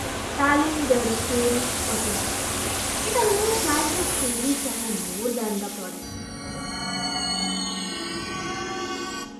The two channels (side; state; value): both; identical; correlation 1.00